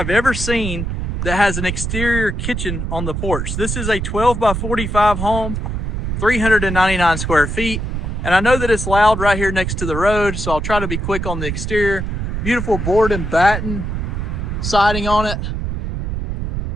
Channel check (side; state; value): right; noise; rumble, 3 dB below the sound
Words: ever seen that has an exterior kitchen on the porch. This is a 12 by 45 home, 399 square feet. And I know that it's loud right here next to the road, so I'll try to be quick on the exterior. Beautiful board and batten siding on it